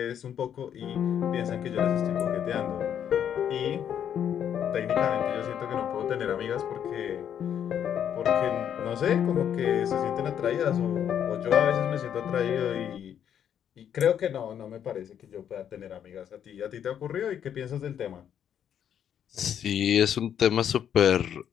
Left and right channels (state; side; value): quieter; right; 9.2 dB